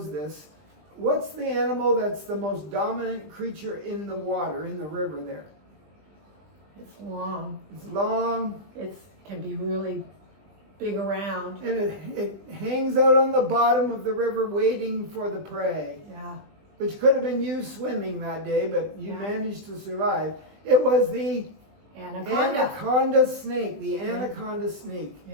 this. What's the animal that's the most dominant creature in the water, in the river there? It's long. It's long. It can be really big around. And it hangs out on the bottom of the river waiting for the prey. Yeah. Which could have been you swimming that day, but you Yeah. managed to survive. It was the anaconda snake, the anaconda snake.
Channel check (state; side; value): late; left; 20 ms